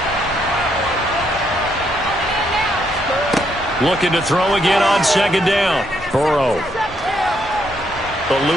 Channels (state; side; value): normal; both; correlation 0.74